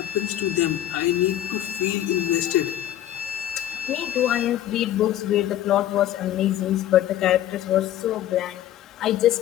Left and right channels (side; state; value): right; quieter; 12.4 dB